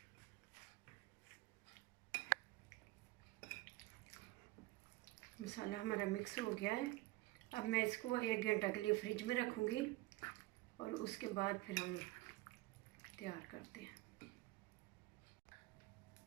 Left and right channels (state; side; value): quieter; left; 19.2 dB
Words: मसाला हमारा मिक्स हो गया है। अब मैं इसको 1 घंटा के लिए फ्रिज में रखूँगी और उसके बाद फिर हम तैयार करते हैं।